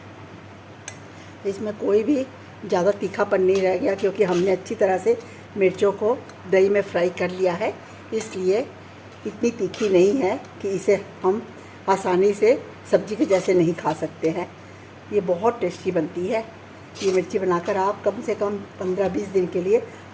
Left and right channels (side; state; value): both; identical; correlation 1.00